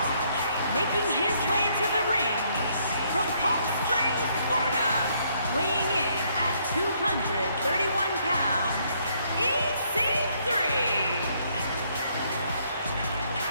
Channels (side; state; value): both; inverted; correlation -0.69